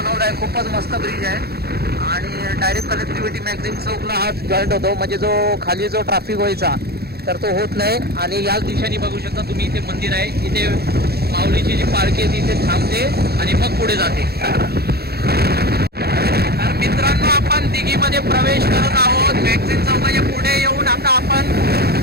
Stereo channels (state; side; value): late; left; 0.46 ms